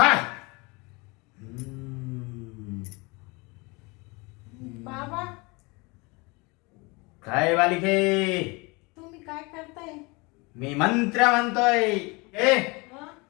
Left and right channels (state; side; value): quieter; right; 27.0 dB